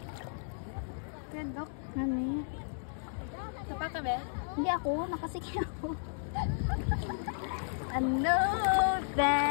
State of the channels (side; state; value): right; silent; digital silence